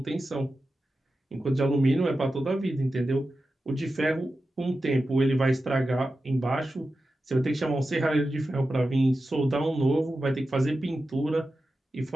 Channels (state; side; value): normal; both; correlation 0.92